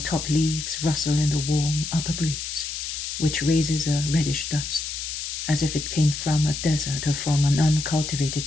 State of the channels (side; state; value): left; noise; hiss, 5 dB below the sound